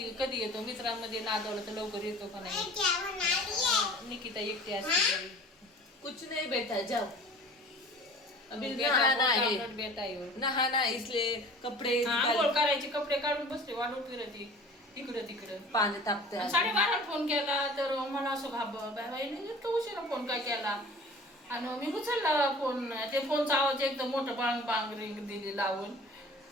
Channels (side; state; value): both; normal; correlation 0.44